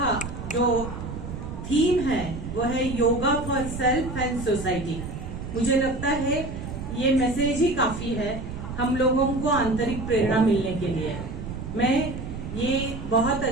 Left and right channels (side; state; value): right; noise; rumble, 8 dB below the sound